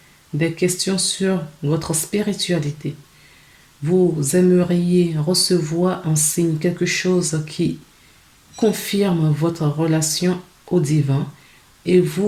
des questions sur votre spiritualité. Vous aimeriez recevoir un signe, quelque chose qui confirme votre relation au divin et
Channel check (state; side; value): identical; both; correlation 1.00